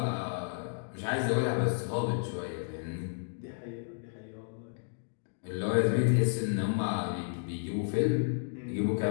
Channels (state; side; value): silent; right; digital silence